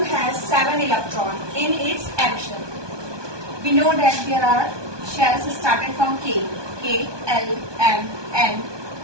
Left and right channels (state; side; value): late; left; 1.2 ms